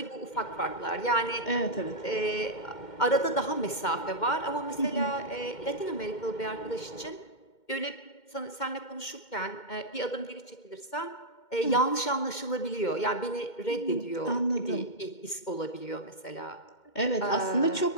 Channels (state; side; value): late; right; 2.1 ms